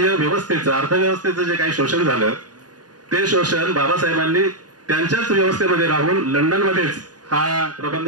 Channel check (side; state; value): left; late; 0.69 ms